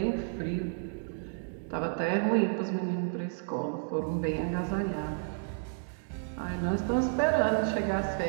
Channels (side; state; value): left; silent; digital silence